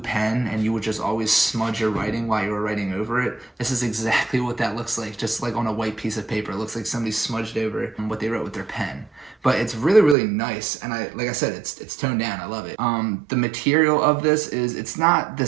and you would just always smudge your writing while you were writing over it. This is exactly what that looks like, just on a white piece of paper. It looks like somebody smudged over what they wrote with their pen. But it's really, really nice, and like I said, it's toned down. I love it. The material of this is, it's not the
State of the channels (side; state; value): left; drops out; at 10.2 s